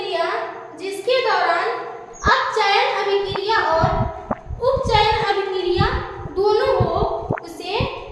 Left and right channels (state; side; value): identical; both; correlation 1.00